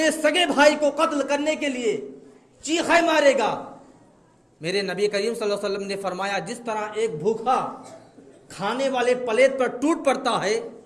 سگے بھائی کو قتل کرنے کے لیے چیخے مارے گا۔ میرے نبی کریم صلی اللہ علیہ وسلم نے فرمایا جس طرح ایک بھوکا کھانے والے پلیٹ پر ٹوٹ پڑتا ہے،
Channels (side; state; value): both; identical; correlation 1.00